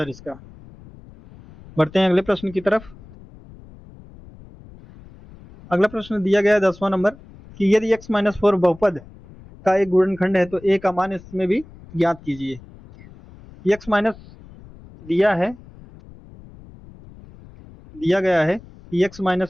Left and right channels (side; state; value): left; noise; rumble, 21 dB below the sound